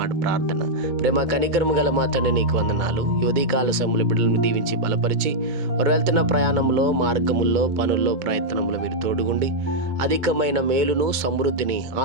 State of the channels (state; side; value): late; left; 2.2 ms